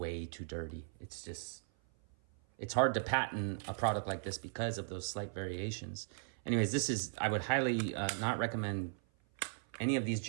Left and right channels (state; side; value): silent; left; 53 dB below the other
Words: too dirty. It's hard to patent a product like this because of those slight variations. Anyways, I would highly not recommend any of these